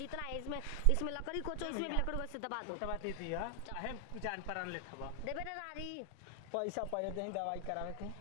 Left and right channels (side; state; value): both; different; correlation 0.00